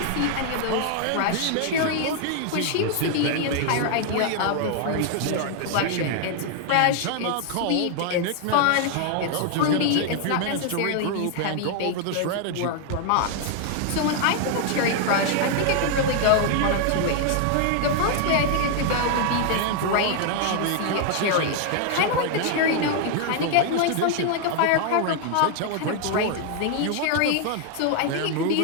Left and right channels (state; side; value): different; both; correlation 0.00